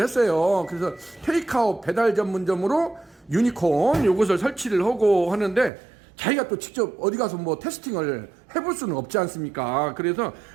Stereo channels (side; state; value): left; drops out; at 5.7 s